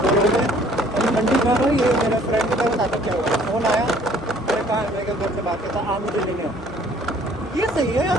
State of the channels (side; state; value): both; normal; correlation 0.57